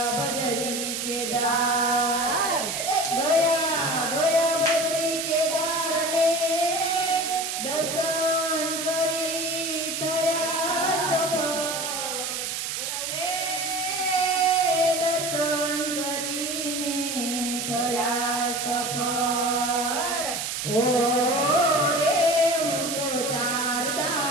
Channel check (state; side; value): noise; right; hiss, 3 dB below the sound